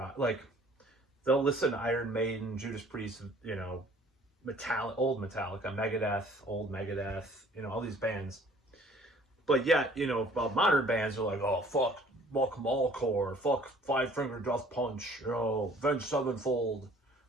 Like, they'll listen to Iron Maiden, Judas Priest, Metallica, old Metallica, Megadeth, old Megadeth, all these bands. But yet, about modern bands, they're like, oh, fuck Malcore, fuck Five Finger Death Punch, Avenged Sevenfold,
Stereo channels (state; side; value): normal; both; correlation 0.55